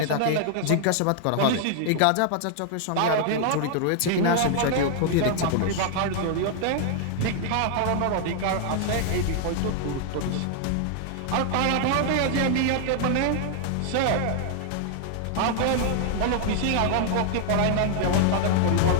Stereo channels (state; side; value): different; both; correlation 0.00